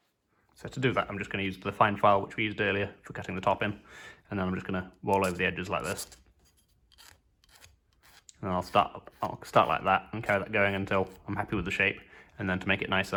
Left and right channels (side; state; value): both; identical; correlation 1.00